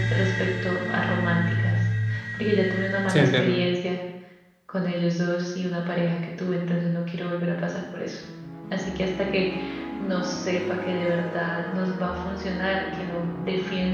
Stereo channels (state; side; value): identical; both; correlation 1.00